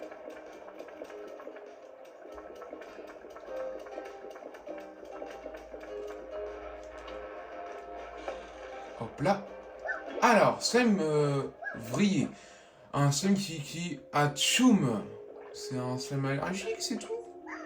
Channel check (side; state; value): both; identical; correlation 1.00